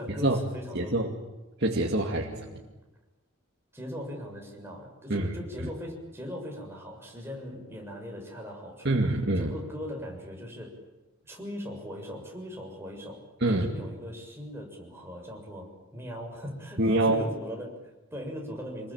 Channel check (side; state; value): both; normal; correlation 0.36